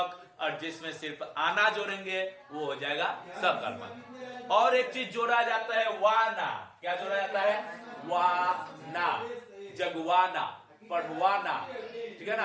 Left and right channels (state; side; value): identical; both; correlation 1.00